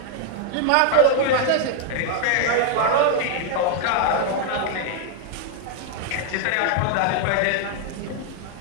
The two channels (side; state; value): both; different; correlation 0.00